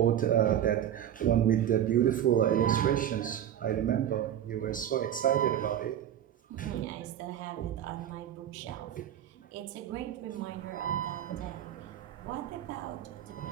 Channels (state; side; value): quieter; left; 10.6 dB